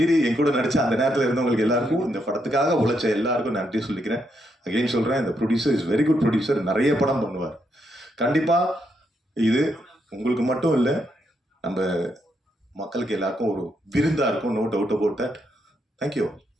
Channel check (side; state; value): both; normal; correlation 0.79